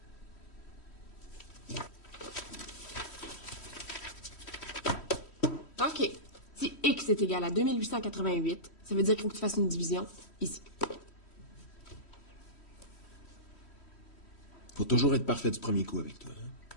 OK. Si X est égal à 2888, ça veut dire qu'il faut que tu fasses une division ici. Faut toujours être parfait du premier coup avec toi. Hein?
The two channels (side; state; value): right; late; 3.1 ms